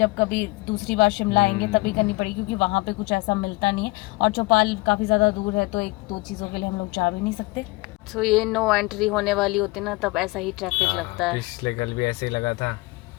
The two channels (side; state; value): right; quieter; 23.3 dB